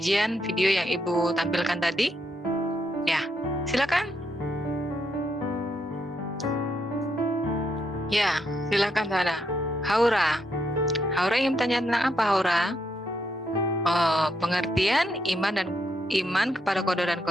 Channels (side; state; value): both; normal; correlation 0.78